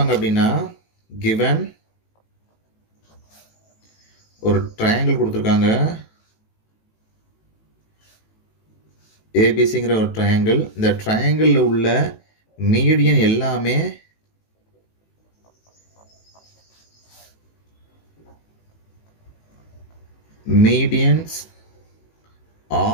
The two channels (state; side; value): late; right; 18 ms